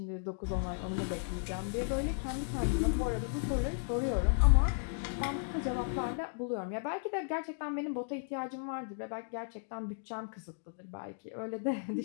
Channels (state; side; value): silent; right; digital silence